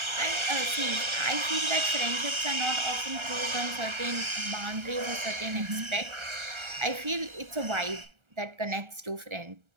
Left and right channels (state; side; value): late; left; 1.3 ms